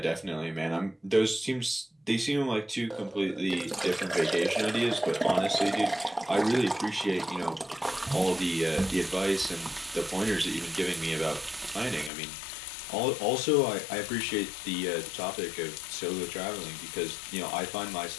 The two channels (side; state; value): right; drops out; at 12.1 s